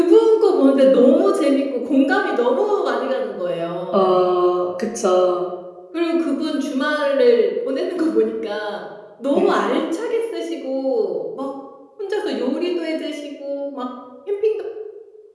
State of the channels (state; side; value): identical; both; correlation 1.00